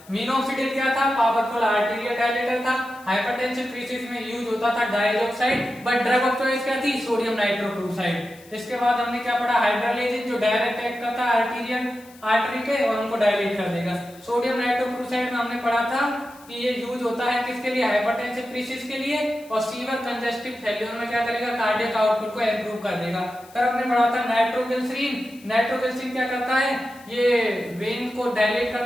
मिनोक्सिडिल क्या था, पावरफुल आर्टीरियल डायलेटर था, हाइपरटेंसिव केसेस में यूज होता था dioxide, but drug of choice क्या थी, सोडियम नाइट्रोक्लोराइड। इसके बाद हमने क्या पढ़ा, हाइड्रोलाइसिस जो डायरेक्ट एक्ट करता है आर्टीरियल आर्टरी के और उनको डायलेट कर देगा। सोडियम नाइट्रोक्लोराइड में हमने पढ़ा था कि ये यूज होता है किसके लिए, हाइपरटेंसिव क्राइसिस के लिए, और सीवर कंजेस्टिव फेल्योर में क्या करेगा, कार्डियक आउटपुट को इंप्रूव कर देगा। फिर हमने पढ़ा था नाइट्रोग्लिसरीन, नाइट्रोग्लिसरीन क्या करता है, ये वेन को डायलेट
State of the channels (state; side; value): noise; left; hiss, 24 dB below the sound